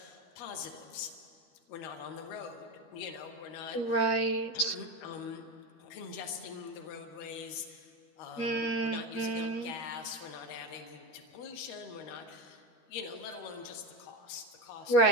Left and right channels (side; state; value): right; late; 13 ms